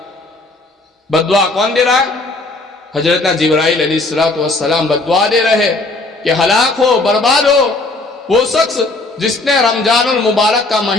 بددعا کون دے رہا ہے؟ حضرت جبرائیل علیہ السلام بددعا دے رہے کہ ہلاک ہو، برباد ہو وہ شخص جس نے رمضان المبارک کا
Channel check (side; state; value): right; quieter; 3.1 dB